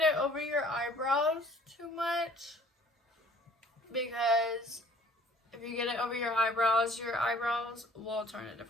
it over your eyebrows too much, because if you get it over your eyebrows will turn a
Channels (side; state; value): both; normal; correlation 0.54